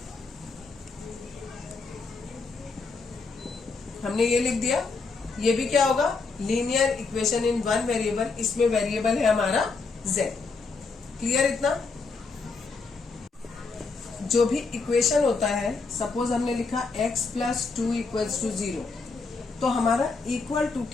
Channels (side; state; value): right; quieter; 4.3 dB